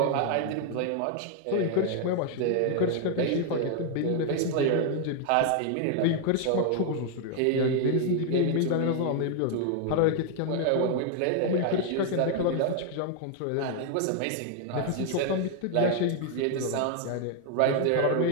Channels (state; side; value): different; both; correlation 0.00